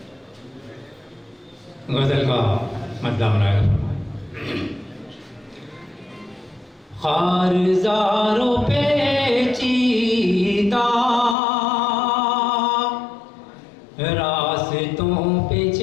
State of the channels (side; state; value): right; drops out; at 11.4 s